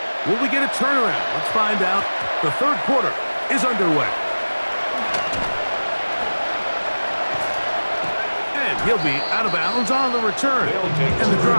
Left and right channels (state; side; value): inverted; both; correlation -1.00